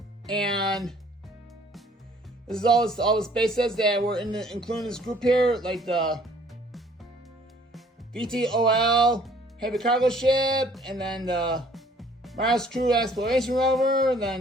And this is all the spaces that were included in this group here, like the VTOL heavy cargo ship, and then the Mars Crew Exploration Rover, and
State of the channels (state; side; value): normal; both; correlation 0.58